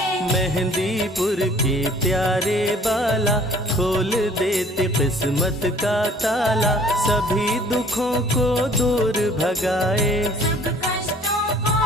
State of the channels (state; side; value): normal; both; correlation 0.55